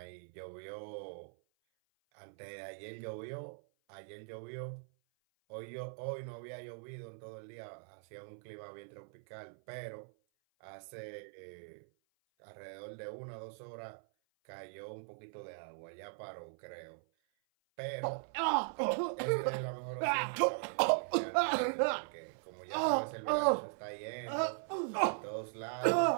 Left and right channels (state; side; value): silent; left; 52 dB below the other